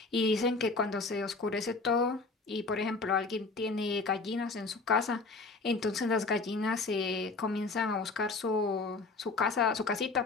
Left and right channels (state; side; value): quieter; right; 3.8 dB